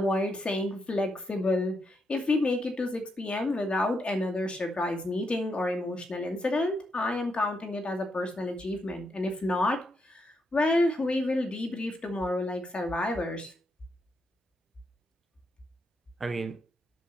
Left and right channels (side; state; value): both; normal; correlation 0.81